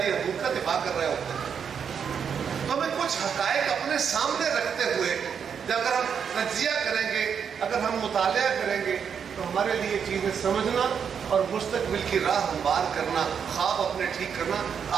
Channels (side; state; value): left; quieter; 7.2 dB